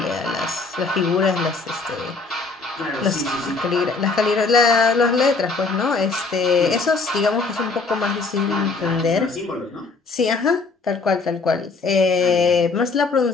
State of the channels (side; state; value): right; quieter; 4.1 dB